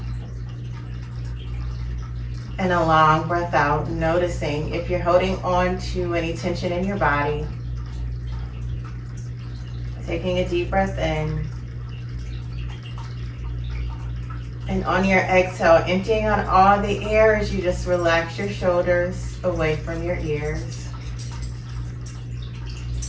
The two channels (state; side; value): identical; both; correlation 1.00